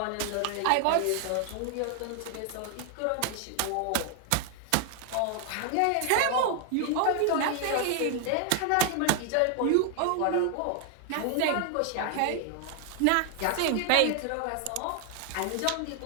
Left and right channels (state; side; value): different; both; correlation 0.00